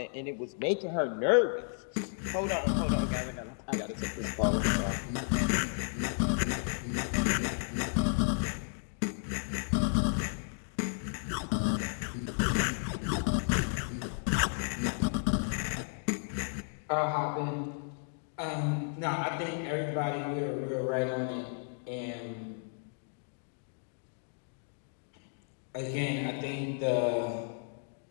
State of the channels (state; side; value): silent; right; 56 dB below the other